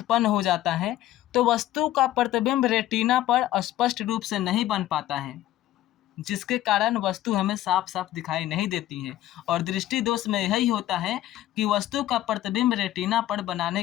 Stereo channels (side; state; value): right; quieter; 14.0 dB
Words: हो जाता है तो वस्तु का प्रतिबिंब रेटिना पर स्पष्ट रूप से नहीं बन पाता है, जिसके कारण वस्तु हमें साफ साफ दिखाई नहीं देती है। और दृष्टि दोष में यही होता है कि वस्तु का प्रतिबिंब रेटिना पर